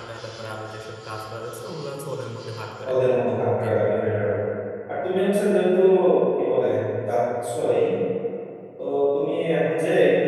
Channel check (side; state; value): both; identical; correlation 1.00